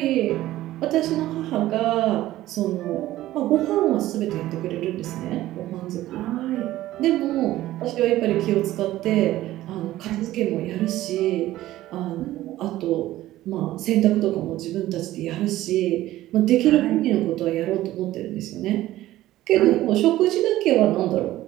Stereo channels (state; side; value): quieter; left; 15.2 dB